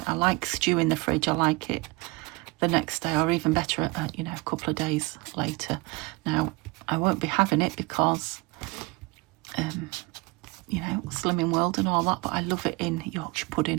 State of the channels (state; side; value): quieter; left; 24.8 dB